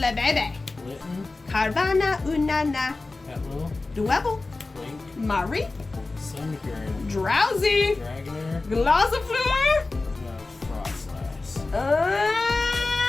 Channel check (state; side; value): quieter; right; 3.4 dB